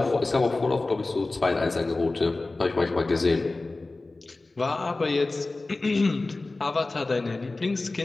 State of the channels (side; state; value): right; quieter; 3.2 dB